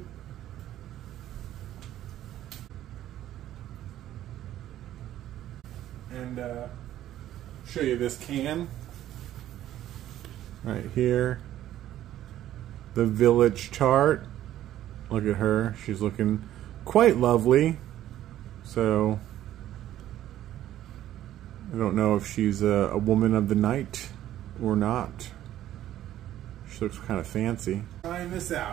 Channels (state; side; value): quieter; left; 12.7 dB